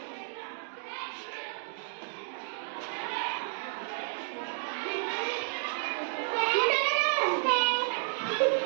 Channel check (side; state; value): left; silent; digital silence